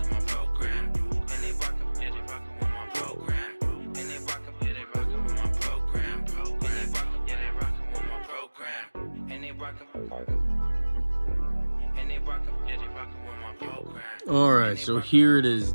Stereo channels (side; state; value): both; inverted; correlation -1.00